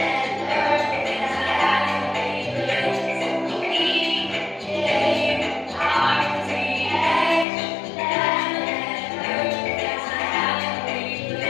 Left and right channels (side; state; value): right; drops out; at 7.5 s